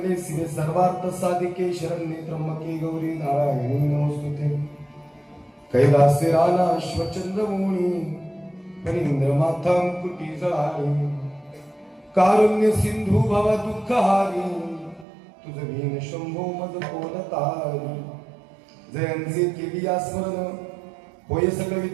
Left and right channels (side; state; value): left; drops out; at 15.1 s